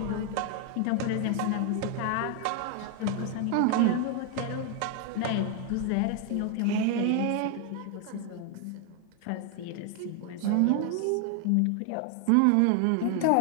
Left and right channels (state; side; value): different; both; correlation 0.01